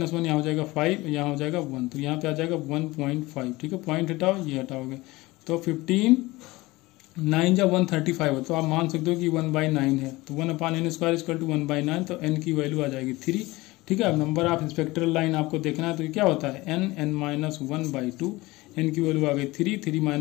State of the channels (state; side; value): quieter; right; 20.6 dB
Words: 1, यहाँ हो जाएगा 5, यहाँ हो जाएगा 1, तो यहाँ पे आ जाएगा 1.5, ठीक है। पॉइंट हटाओ, ये हटाओगे तो 15 9 जा 135 है, तो आप मान सकते हो कि 1/9 है, तो 1/n स्क्वायर इक्वल टू 1/9, तो n की वैल्यू आ जाएगी 3, ठीक है। अब नंबर ऑफ स्पेक्ट्रल लाइन आपको देखना है, तो ये क्या होता है n माइनस 1/2, n की वैल्यू आ गई 3